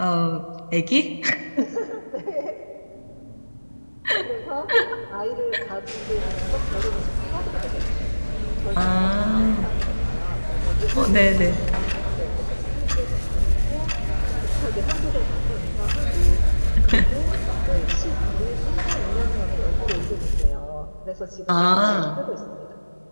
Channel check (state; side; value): inverted; both; correlation -1.00